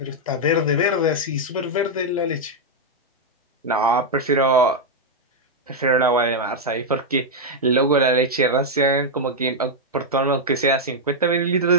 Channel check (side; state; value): both; normal; correlation -0.02